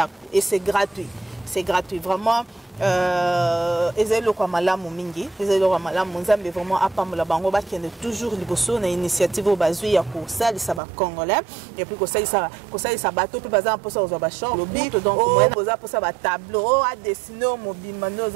et c'est gratuit vraiment ezelo kwa malamu mingi ezelo kwa malamu nzambe vraiment apambola bango bakende toujours liboso na initiative bazui ya kosalisa ba congolais et puis kosalisa bato pe baza mposa ozwa ba champ lobi donc moyen boza posa ba tableau a dessiner mobimba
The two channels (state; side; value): drops out; left; at 10.8 s